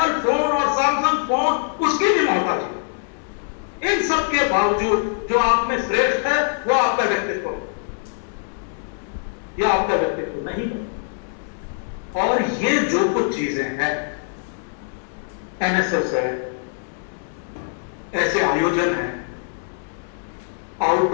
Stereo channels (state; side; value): silent; right; digital silence